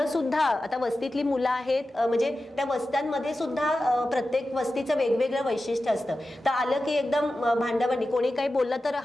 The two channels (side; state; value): both; normal; correlation 0.93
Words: सुद्धा आता वस्तीतली मुलं आहेत, म्हणजे त्या वस्त्यांमध्ये सुद्धा प्रत्येक वस्तीचं वेगवेगळं वैशिष्ट्य असतं, तर आलं की एकदम भांडाभांडी, कोणी काही बोललं तर